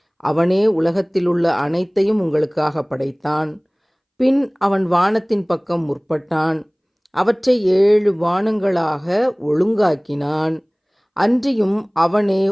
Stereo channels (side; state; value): both; identical; correlation 1.00